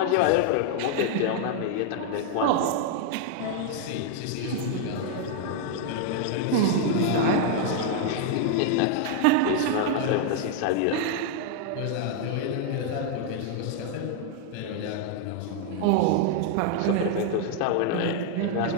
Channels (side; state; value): both; different; correlation 0.00